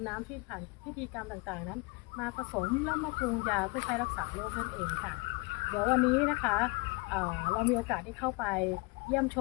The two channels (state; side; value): quieter; right; 27.7 dB